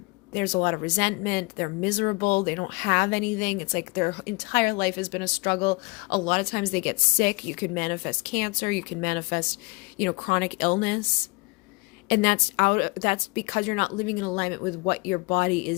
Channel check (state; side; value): quieter; right; 27.5 dB